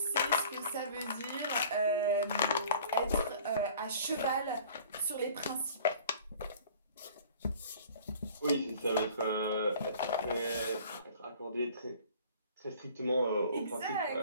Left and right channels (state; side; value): inverted; both; correlation -0.49